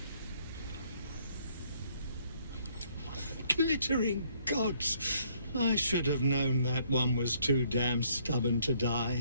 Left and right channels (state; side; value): inverted; both; correlation -0.67